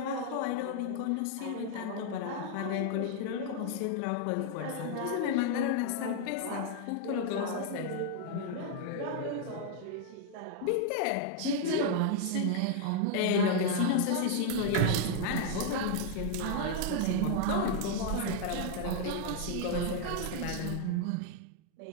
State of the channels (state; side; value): different; both; correlation 0.00